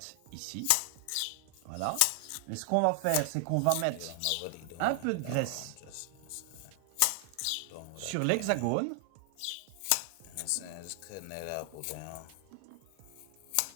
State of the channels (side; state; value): both; different; correlation 0.00